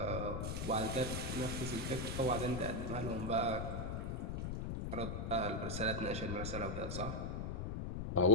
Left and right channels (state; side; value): noise; left; rumble, 3 dB below the sound